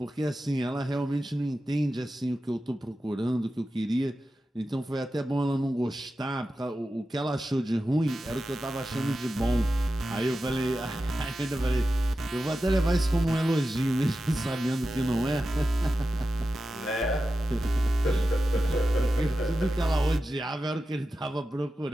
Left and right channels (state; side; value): normal; both; correlation 0.92